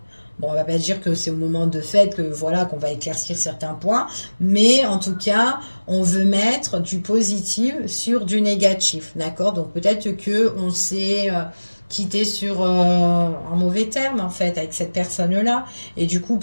Bon, on va pas dire que c'est au moment de fête que voilà qu'on va éclaircir certains points, mais en tout cas, on veut mettre du positif sur du négatif, d'accord? Donc, peut-être que on s'est quitté sur un mauvais terme, en fait, avec cette personne-là. Et du coup,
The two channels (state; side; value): inverted; both; correlation -1.00